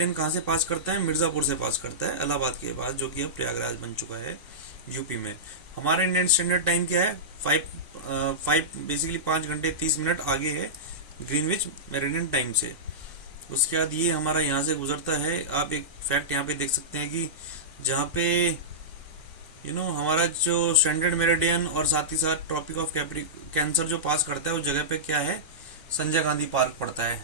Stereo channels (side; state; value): both; normal; correlation -0.14